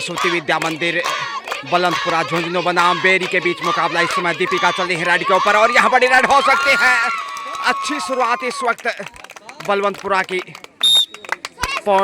विद्या मंदिर बुलंदपुरा झुंझुनू बनाम बेरी के बीच मुकाबला। इस समय दीपिका चल रही है रेड के ऊपर और यहाँ बड़ी रेड हो सकती है। अच्छी शुरुआत इस वक्त बलवंतपुरा की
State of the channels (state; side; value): identical; both; correlation 1.00